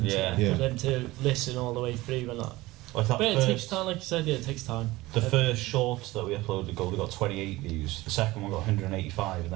for them to listen all the way through and that. Like that but it takes time, like you said, yeah, it takes time. The first shorts that we uploaded got 28 views, the second one got 185, and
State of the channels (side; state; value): left; quieter; 19.2 dB